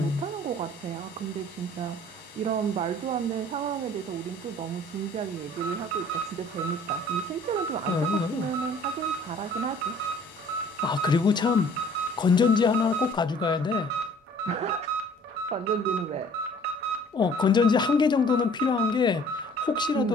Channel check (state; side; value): normal; both; correlation 0.53